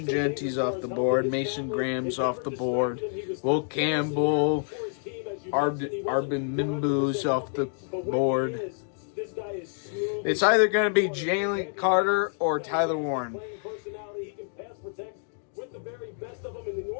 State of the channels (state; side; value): silent; right; digital silence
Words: Genty's off the board. Mason Graham's off the board. Will Campbell, Arbin Mimbu's off the board. It's either going to be Jalen Carter or Tyler Warren.